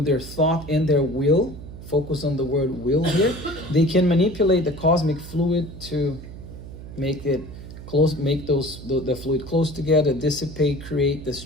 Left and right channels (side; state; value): right; noise; hum, 13 dB below the sound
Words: their thought and their will, focus on the word will here, they can manipulate the cosmic fluid to make it close, make the fluid close together, dissipate, create,